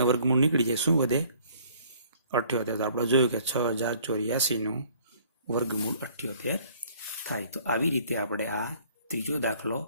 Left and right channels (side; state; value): both; inverted; correlation -0.57